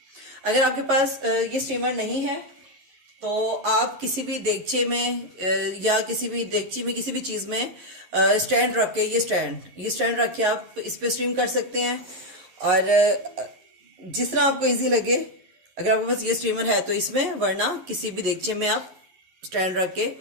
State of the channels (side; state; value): left; late; 11 ms